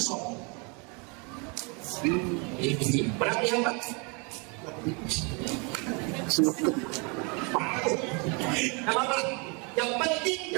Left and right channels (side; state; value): left; quieter; 32.4 dB